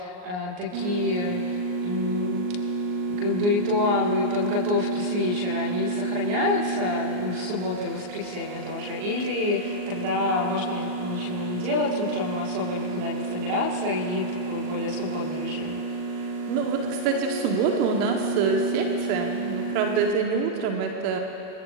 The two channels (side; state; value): left; late; 39 ms